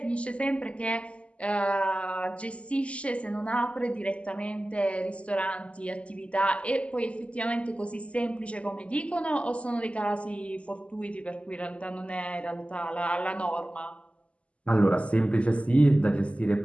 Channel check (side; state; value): right; late; 0.060 ms